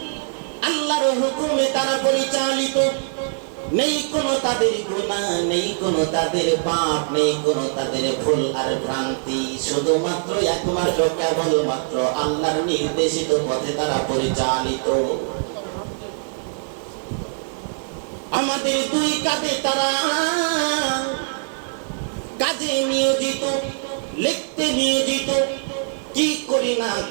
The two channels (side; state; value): left; silent; 63 dB below the other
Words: আল্লাহর হুকুমে তারা পরিচালিত। নেই কোনো তাদের গুনাহ, নেই কোনো তাদের পাপ, নেই কোনো তাদের ভুল আর ভ্রান্তি। শুধুমাত্র একমাত্র কেবলমাত্র আল্লাহর নির্দেশিত পথে তারা পরিচালিত। আমাদের দুই কাঁধে তারা কাজে নিয়োজিত, লিখতে নিয়োজিত। কি করি না